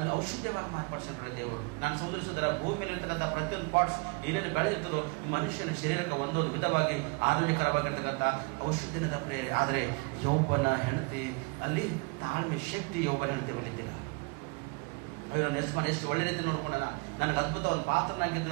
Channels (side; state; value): left; quieter; 31.0 dB